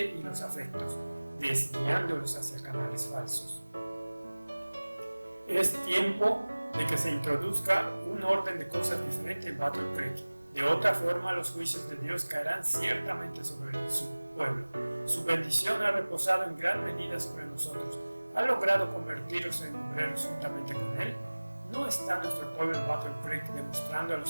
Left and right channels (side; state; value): both; inverted; correlation -1.00